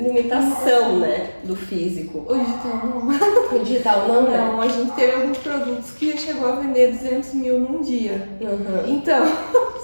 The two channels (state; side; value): inverted; both; correlation -1.00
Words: né, do físico. O digital não. O digital não, né? Não, a gente teve alguns produtos que chegou a vender 200 mil num dia. Então,